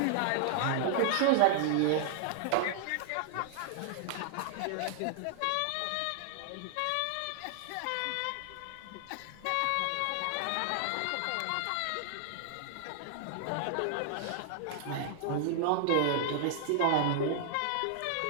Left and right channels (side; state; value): both; different; correlation 0.00